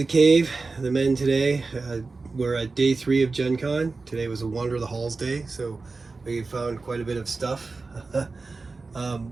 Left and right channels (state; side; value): quieter; left; 3.9 dB